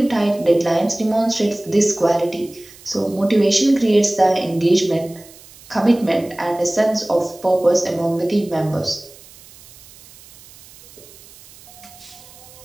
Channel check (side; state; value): right; noise; hiss, 22 dB below the sound